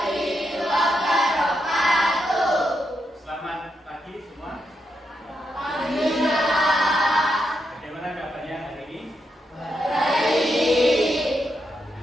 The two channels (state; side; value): normal; both; correlation 0.82